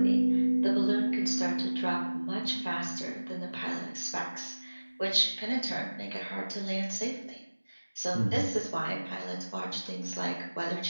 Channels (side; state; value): both; inverted; correlation -1.00